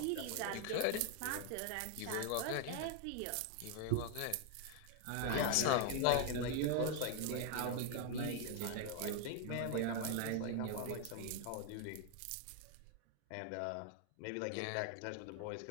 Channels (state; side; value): different; both; correlation 0.00